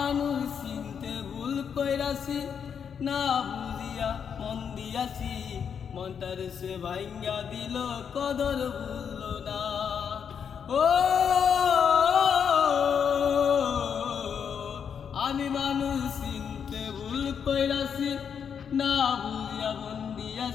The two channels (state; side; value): quieter; right; 7.3 dB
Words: চিনতে ভুল কইরাছি, না বুঝিয়া মন দিয়াছি, মনটার সে ভাঙ্গা দিল কদর ভুলল না। ও আমি মানুষ চিনতে ভুল কইরাছি, না বুঝিয়া মন